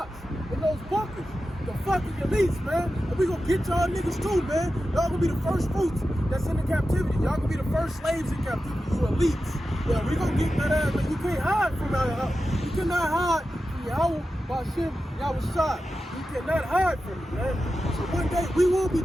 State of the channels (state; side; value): normal; both; correlation 0.92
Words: in those bunkers? The fucking elites, man. And we gonna get y'all niggas too, man. Y'all gonna be the first fruits that's in the captivity. Y'all gonna be the first slaves in captivity, you elites. Yeah, we gonna get that ass, man. You can't hide from that. You cannot hide from Yahweh, Bashim, Yahweh Shai. You cannot hide from it, man. So one day we will be